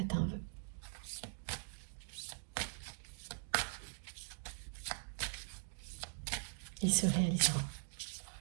un vœu. Il se réalisera.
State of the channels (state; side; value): silent; left; digital silence